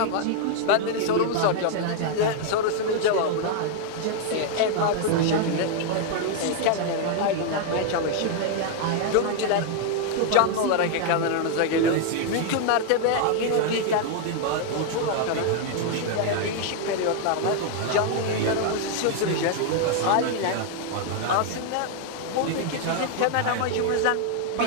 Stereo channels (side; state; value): both; different; correlation 0.00